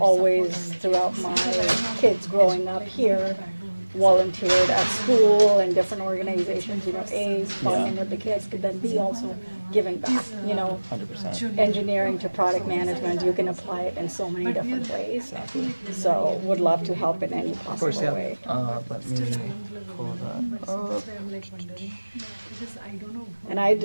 always, throughout my kids growing up here, volunteered at school and different organizations, you know, A, bonding with the kids, could then be also giving back, you know. 100%. Engineering to product management, you can apply it in so many different ways. So would love to help in any possible way. Let me pull that up. And I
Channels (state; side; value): inverted; both; correlation -1.00